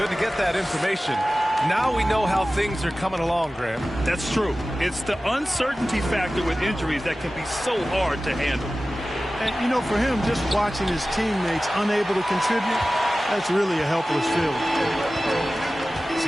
to get that information. Now we know how things are coming along, Graham. That's true. It's the uncertainty factor with injuries that can be so hard to handle. And, you know, for him, just watching his teammates unable to contribute, that's really a helpless feeling.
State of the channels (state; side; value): normal; both; correlation 0.96